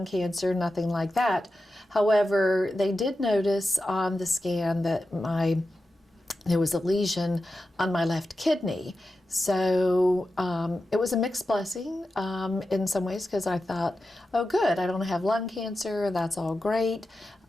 cancer, nothing like that. However, they did notice on the scan that there was a lesion on my left kidney. So it was a mixed blessing in some ways, because I thought, oh good, I don't have lung cancer, that's all great.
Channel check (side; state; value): both; normal; correlation 0.91